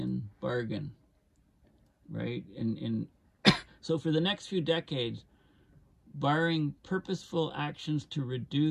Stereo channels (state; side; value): identical; both; correlation 1.00